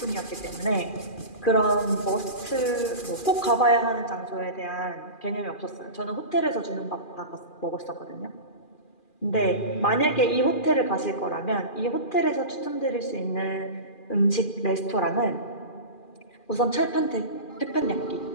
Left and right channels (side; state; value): right; late; 2.4 ms